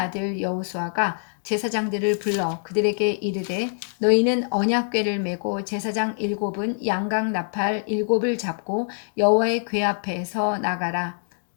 여호수아가 제사장들을 불러 그들에게 이르되 너희는 언약궤를 메고 제사장 7은 양각 나팔 7을 잡고 여호와의 궤 앞에서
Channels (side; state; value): right; silent; digital silence